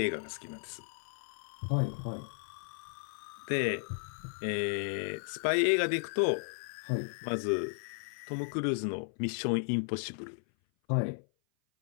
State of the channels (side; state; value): right; silent; 55 dB below the other